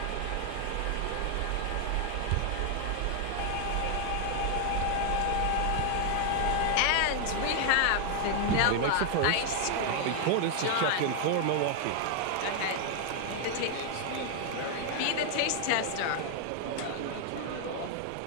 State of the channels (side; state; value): both; different; correlation 0.00